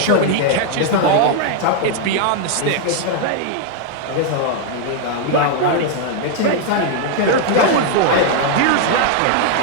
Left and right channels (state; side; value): different; both; correlation 0.00